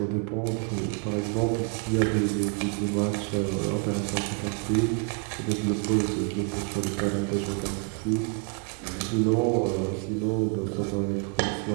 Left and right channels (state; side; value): quieter; left; 37.5 dB